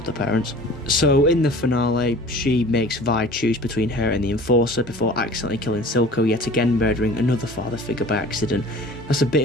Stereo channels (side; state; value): both; normal; correlation 0.45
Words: her parents. So in the finale, she makes Vi choose between her and the enforcer before accidentally killing Silco, yet again murdering another father figure by accident. That's a